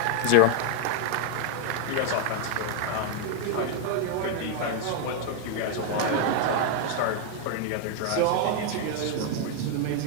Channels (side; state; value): both; different; correlation 0.00